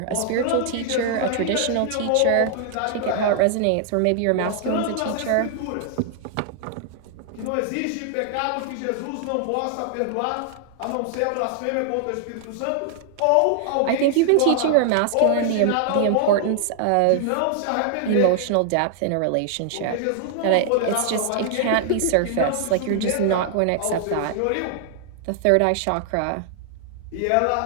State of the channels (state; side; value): different; both; correlation 0.00